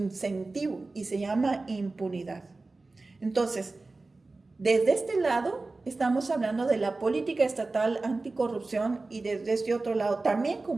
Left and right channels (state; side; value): quieter; left; 3.4 dB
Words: y se llama impunidad. Entonces, desde este lado estamos hablando de la política estatal anticorrupción, y desde este otro lado, también